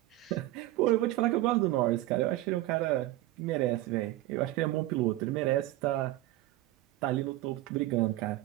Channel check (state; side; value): quieter; left; 16.8 dB